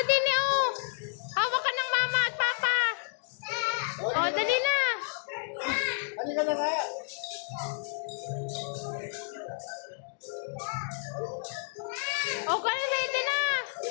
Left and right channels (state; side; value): silent; right; 57 dB below the other